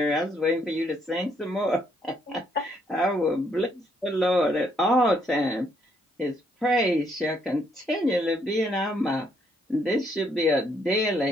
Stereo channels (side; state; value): both; normal; correlation 0.71